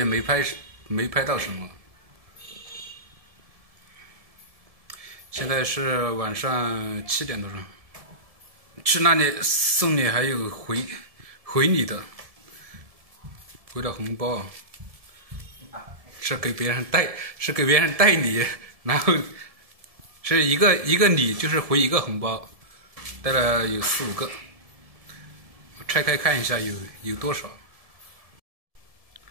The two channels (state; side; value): late; left; 1.7 ms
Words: 没拍到什么。现在是晚上7点多钟，去那里送礼还有回礼的，回了红包，是给别人带礼，然后。是一个礼就是回一个红包，带了有4、5个，拆开看一下有多少。